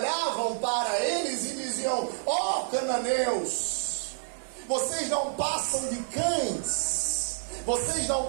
para eles e diziam: ó cananeus, vocês não passam de cães, vocês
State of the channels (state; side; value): silent; left; digital silence